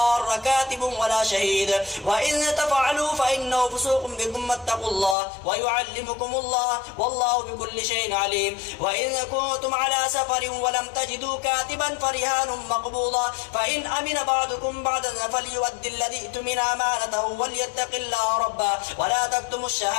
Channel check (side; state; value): right; drops out; at 5.2 s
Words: كاتب ولا شهيد وإن تفعلوا فإنه فسوق بكم واتقوا الله ويعلمكم الله والله بكل شيء عليم. وإن كنتم على سفر ولم تجدوا كاتبا فرهان مقبوضة فإن أمن بعضكم بعضا فليؤدي الذي اؤتمن أمانته وليتق الله ربه ولا تكتموا